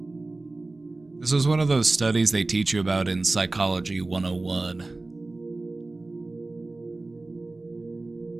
This was one of those studies they teach you about in Psychology 101.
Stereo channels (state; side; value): quieter; left; 3.1 dB